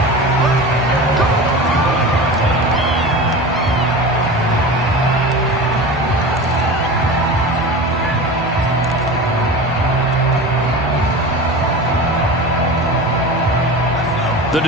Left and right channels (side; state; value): both; normal; correlation 0.31